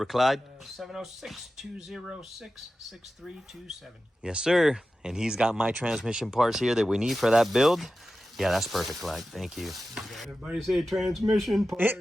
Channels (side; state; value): both; normal; correlation 0.94